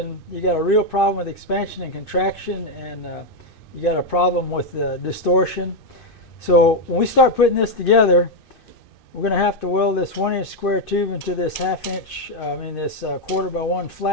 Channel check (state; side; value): late; right; 2.6 ms